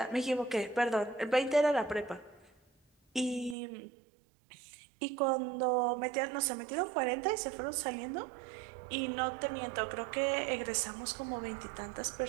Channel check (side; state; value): left; drops out; at 3.6 s